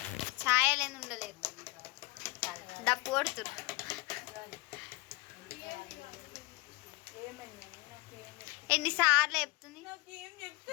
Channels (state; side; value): quieter; right; 23.3 dB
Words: ఛాయలేని ఉండలేదు. డప్పు కొడుతురు. ఎన్నిసార్లు చెప్తుంది